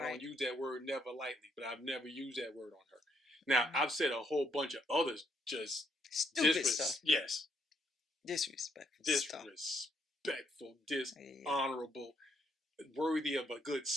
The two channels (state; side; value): normal; both; correlation 0.73